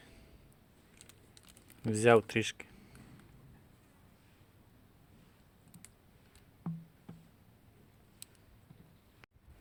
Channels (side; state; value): both; identical; correlation 1.00